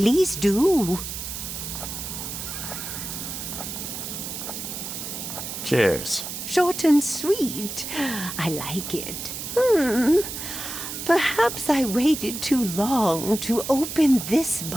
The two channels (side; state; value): right; noise; hiss, 7 dB below the sound